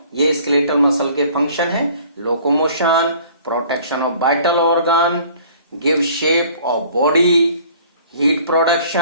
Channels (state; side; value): inverted; both; correlation -0.52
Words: ये स्केलेटल मसल के फंक्शन है। Locomotion, protection of vital organ, give shape of body, heat